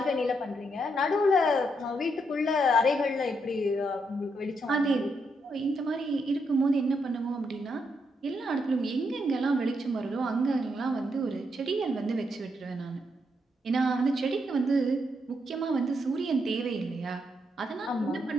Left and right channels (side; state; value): both; normal; correlation 0.79